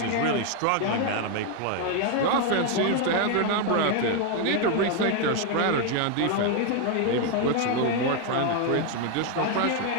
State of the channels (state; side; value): different; both; correlation 0.01